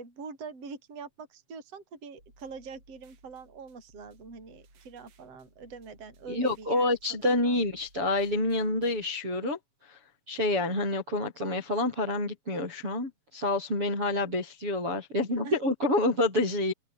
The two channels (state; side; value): late; left; 7.3 ms